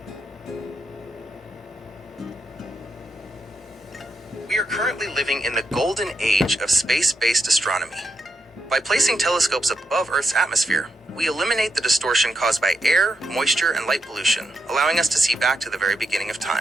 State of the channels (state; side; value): normal; both; correlation 0.83